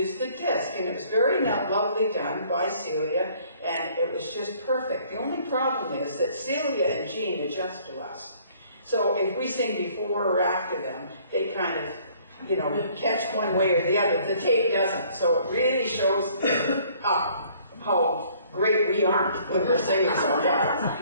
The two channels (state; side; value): inverted; both; correlation -0.59